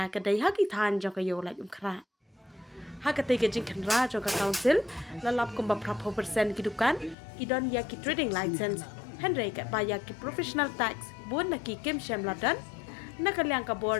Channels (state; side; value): drops out; right; at 7.2 s